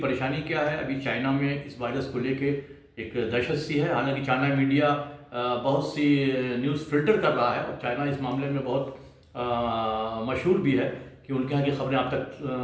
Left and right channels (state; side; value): identical; both; correlation 1.00